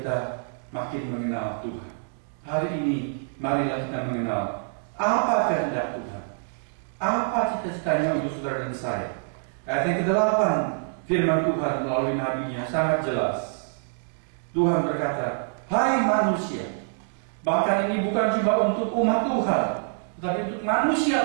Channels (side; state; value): left; silent; digital silence